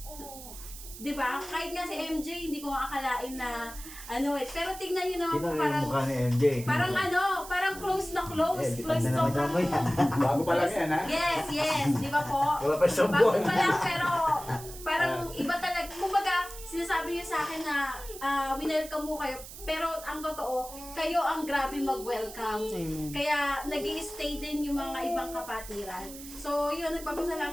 'Di ba? Kahit nga si MJ, hindi ko akalain na pero tignan niyo naman Sino po yung mukha ni MJ? parang close na close. Close na to naman yan. Bago pa lang yan, ha? Yes, di ba po? Wala pa siyang Bago buwan. pa lang, pero parang iba talaga. Kumbaga, sinasabi niyo sa akin na winelcome mo kayo. Pero ang totoo, kayo ang grabe mag-welcome. Kaya nag-i-stay din yung mga ibang kapatiran. So yun,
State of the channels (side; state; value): right; noise; hiss, 14 dB below the sound